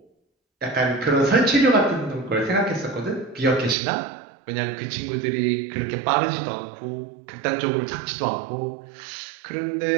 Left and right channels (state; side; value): drops out; left; at 3.8 s